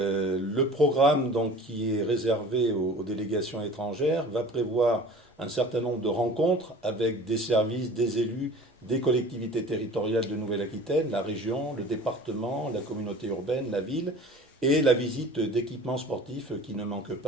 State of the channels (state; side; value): normal; both; correlation 0.43